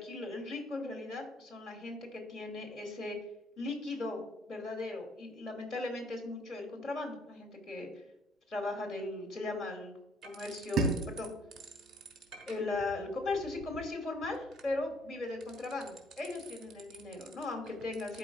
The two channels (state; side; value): normal; both; correlation 0.62